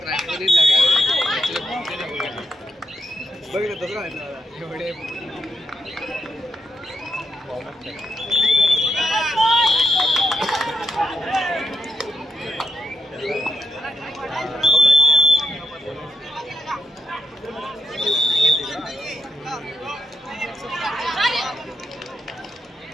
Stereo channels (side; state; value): both; normal; correlation 0.81